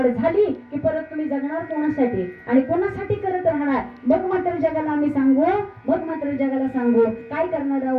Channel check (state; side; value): identical; both; correlation 1.00